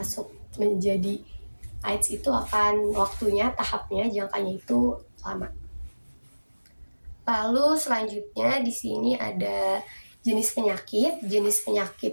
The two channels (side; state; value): both; inverted; correlation -1.00